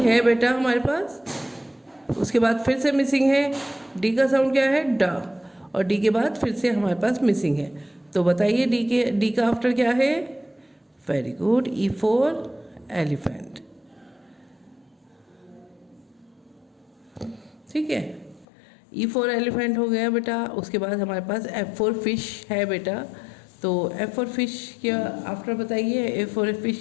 है बेटा हमारे पास। उसके बाद फिर से मिसिंग है, डी का साउंड क्या है? डा, और डी के बाद फिर से हमारे पास मिसिंग है। तो बताइए डी का आफ्टर क्या है? Very good, E for elephant, ठीक है, ई फॉर एलिफेंट हो गया बेटा। उसके बाद हमारे पास एफ फॉर फिश है बेटा। तो एफ फॉर फिश क्या आफ्टर बताइए? एफ फॉर फिश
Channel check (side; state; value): right; drops out; at 18.4 s